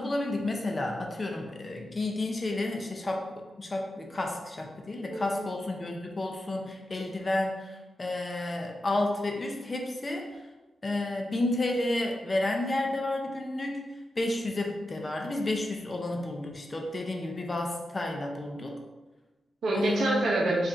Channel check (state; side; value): normal; both; correlation 0.89